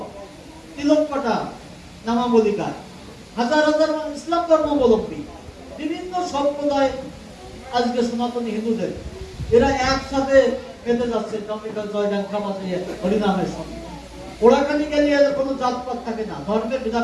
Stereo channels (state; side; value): identical; both; correlation 1.00